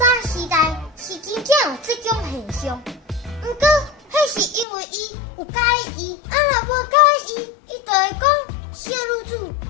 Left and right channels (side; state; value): right; drops out; at 4.7 s